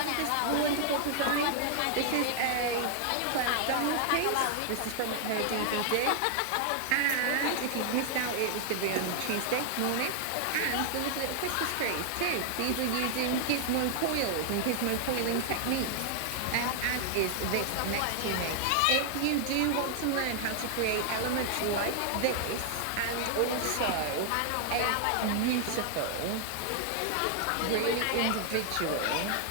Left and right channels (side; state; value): both; different; correlation 0.00